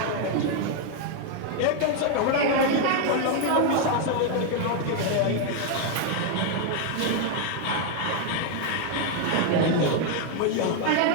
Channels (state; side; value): different; both; correlation 0.00